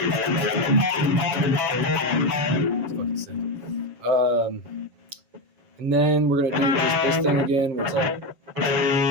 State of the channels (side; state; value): left; late; 7.6 ms